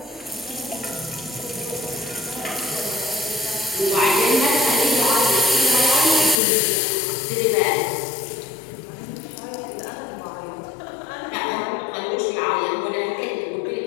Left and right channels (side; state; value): right; drops out; at 6.4 s